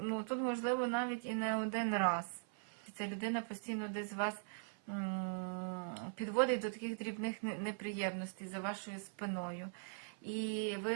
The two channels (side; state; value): left; silent; 51 dB below the other